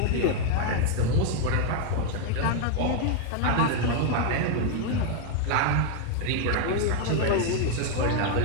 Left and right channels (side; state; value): both; different; correlation 0.00